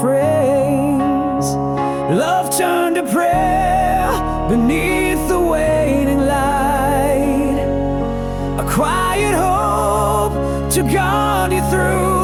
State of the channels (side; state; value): both; identical; correlation 1.00